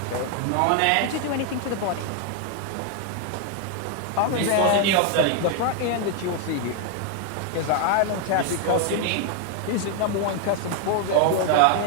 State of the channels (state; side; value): different; both; correlation 0.00